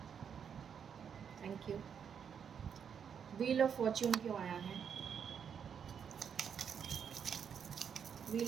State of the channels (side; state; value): left; quieter; 7.5 dB